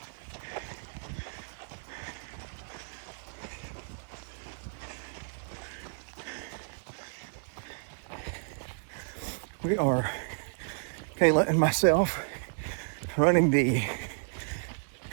We are, Kayla and myself, running the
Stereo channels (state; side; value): silent; left; digital silence